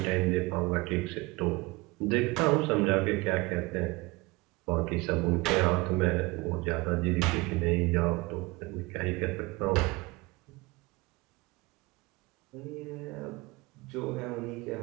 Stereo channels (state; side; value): quieter; left; 23.5 dB